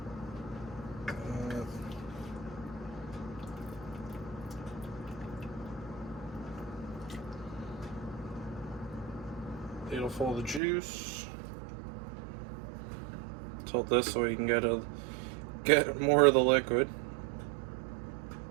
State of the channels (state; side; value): drops out; left; at 10.6 s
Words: Ladle full of the juice. Tilt this so you can get more of the liquid.